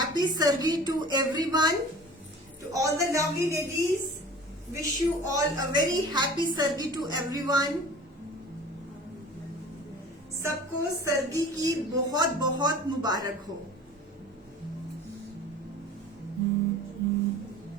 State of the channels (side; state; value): both; normal; correlation 0.42